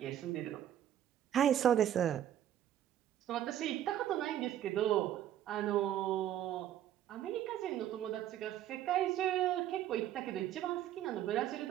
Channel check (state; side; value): quieter; left; 11.3 dB